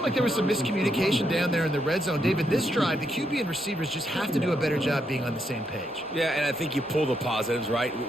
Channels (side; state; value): both; normal; correlation 0.79